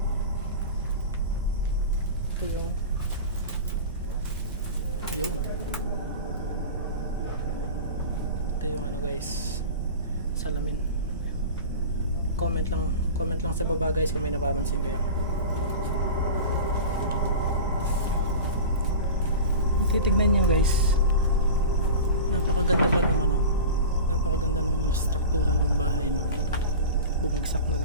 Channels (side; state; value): both; inverted; correlation -0.32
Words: Ito yung yun. Ito yung ano guys, salamin. Comment lang sa baba guys kung may napapansin kayo. Titignan niyo guys, napakaganda pa nung ano, napakaganda nung struktura ng bahay, no. Bumagsak na